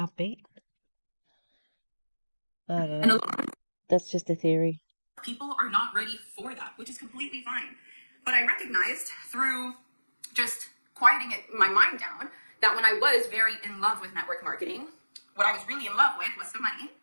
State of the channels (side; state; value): both; inverted; correlation -1.00